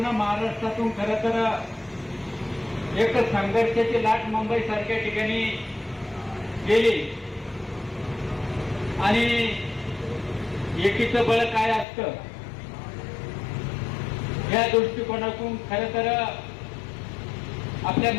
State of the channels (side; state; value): right; drops out; at 11.9 s